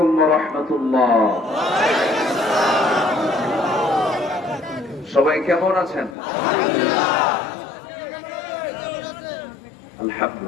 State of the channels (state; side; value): drops out; right; at 6.2 s